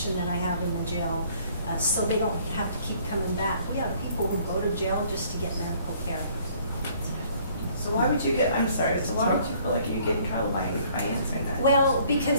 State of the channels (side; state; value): both; inverted; correlation -0.60